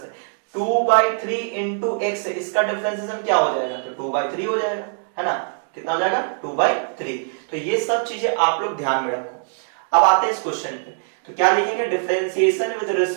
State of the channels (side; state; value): left; silent; digital silence